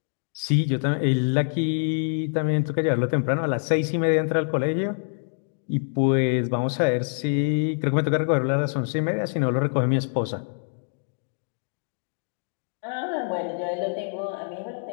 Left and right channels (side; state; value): right; silent; digital silence